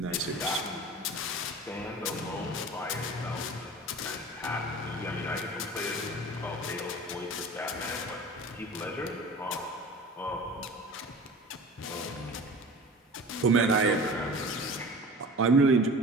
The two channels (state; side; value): normal; both; correlation 0.39